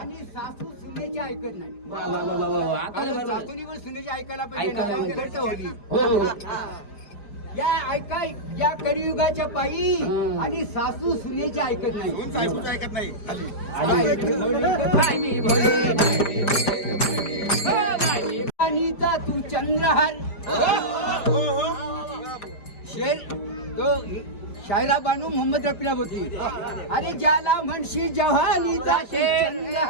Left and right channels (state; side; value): late; right; 5.0 ms